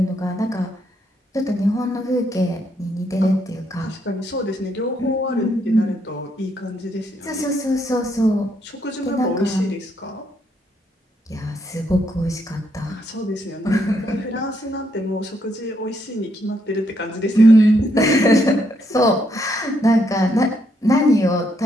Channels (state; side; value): normal; both; correlation 0.75